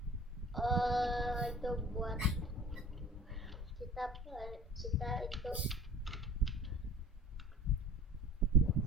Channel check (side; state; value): both; normal; correlation 0.44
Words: itu buat kita itu